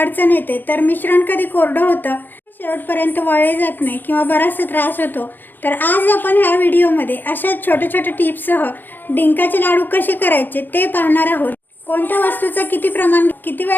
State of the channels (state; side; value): late; right; 0.092 ms